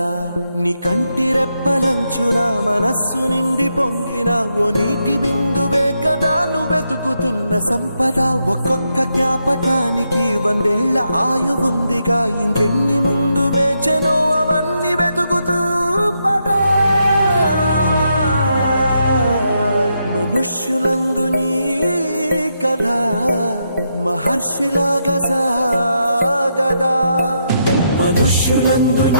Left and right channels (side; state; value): both; inverted; correlation -0.81